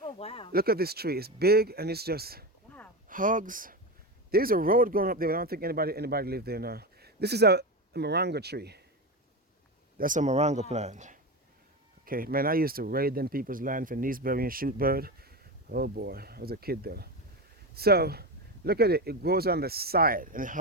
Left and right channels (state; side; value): normal; both; correlation 0.19